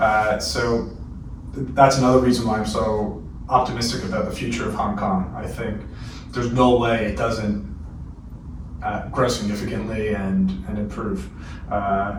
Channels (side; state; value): both; identical; correlation 1.00